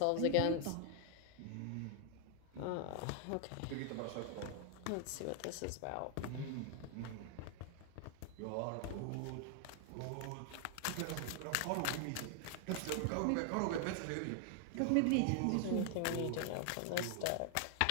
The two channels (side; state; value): both; different; correlation 0.00